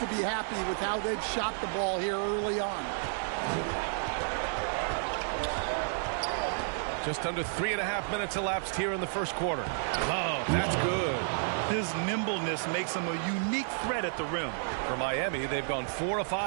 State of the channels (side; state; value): left; silent; digital silence